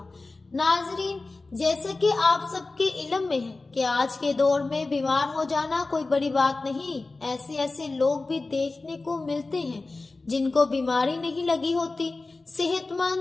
ناظرین، جیسا کہ آپ سب کے علم میں ہے کہ آج کے دور میں بیمار ہو جانا کوئی بڑی بات نہیں۔ ایسے لوگ بھی دیکھنے کو ملتے ہیں جن کو بیماری نہیں لگی ہوتی، صحت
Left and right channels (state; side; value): quieter; right; 3.4 dB